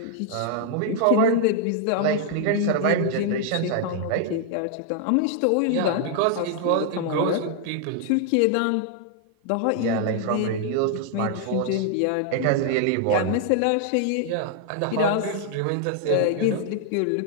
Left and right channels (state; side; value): different; both; correlation 0.00